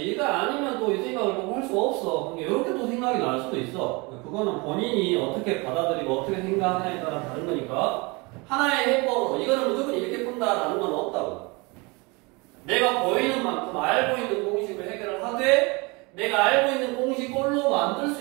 이거 아니면 또 이 생각을 꼭 할 수 없어. 그러니까 이렇게 또 생각이 날 수도 있어. 그거는 본인이 어떻게 받아들이고 어떻게 생각하냐에 따라 다른 거니까 하나의 해법으로 이거는 무조건 이렇게 푼다라는 건 없다고. 내가 보이는 만큼 알고 있는 공식을 해결을 하되 내가 알고 있는 공식 꼴로 만들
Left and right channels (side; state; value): left; quieter; 27.2 dB